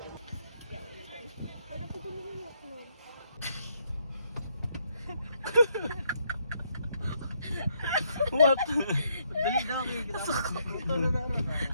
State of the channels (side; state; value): both; inverted; correlation -0.73